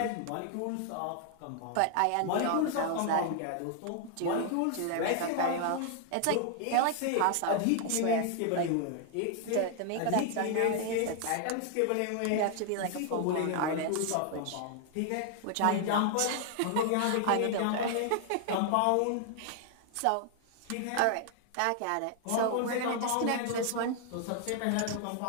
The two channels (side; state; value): both; different; correlation 0.00